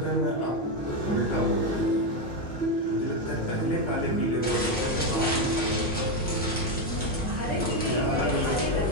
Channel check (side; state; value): both; normal; correlation 0.08